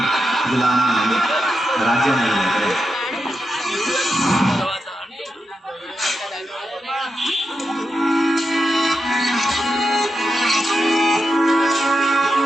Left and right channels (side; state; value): both; normal; correlation 0.87